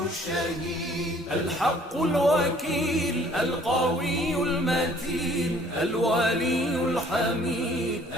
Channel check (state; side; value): normal; both; correlation 0.57